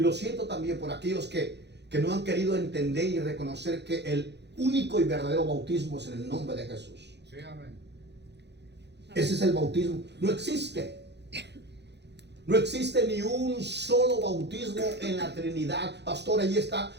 lo siento también por aquellos que no han querido entender y reconocer que el único y verdadero bautismo es en el nombre de Jesús. Sí, amén. Ese es el bautismo. No existe. No existe ni un solo bautismo en la Trinidad. Pastor, ahí está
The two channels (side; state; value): left; late; 0.50 ms